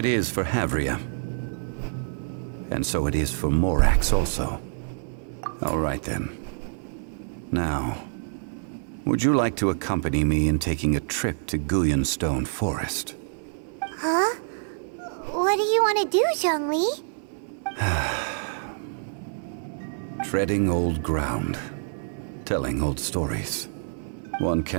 is for Havria. And so it is for Morax also. All right then. Now, would you like to accompany me in taking a trip to Guyanstone Forest? Huh? What do you want to do, Zhongli? Treading old ground, telling old stories. One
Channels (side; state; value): left; silent; 61 dB below the other